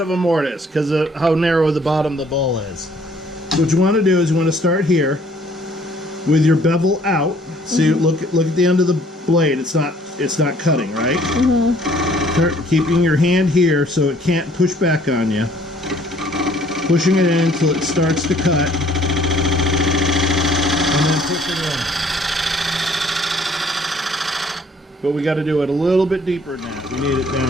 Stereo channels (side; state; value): both; normal; correlation 0.59